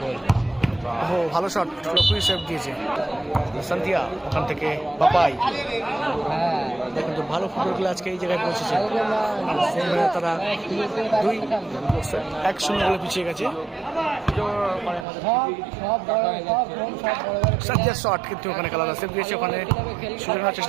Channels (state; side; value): drops out; left; at 15.1 s